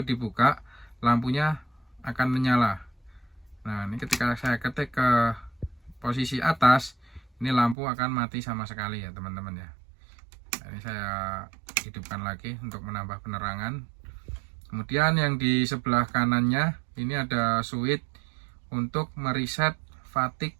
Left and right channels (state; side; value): drops out; left; at 7.8 s